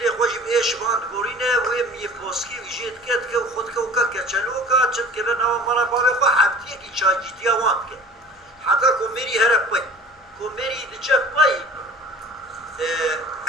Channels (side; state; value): both; normal; correlation 0.43